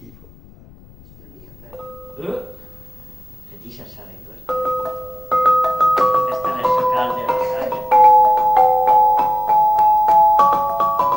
Che dice a Saremo? Questa adesso calda e la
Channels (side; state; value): left; noise; rumble, 24 dB below the sound